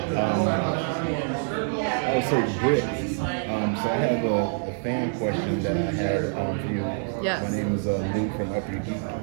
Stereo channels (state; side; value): silent; left; 61 dB below the other